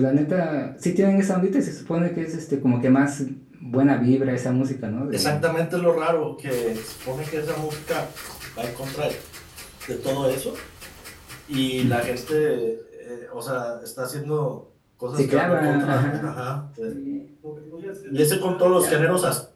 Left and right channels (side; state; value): both; identical; correlation 1.00